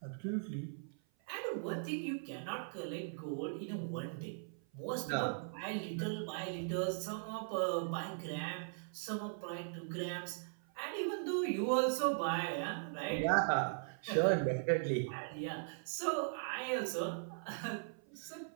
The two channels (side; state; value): left; silent; 51 dB below the other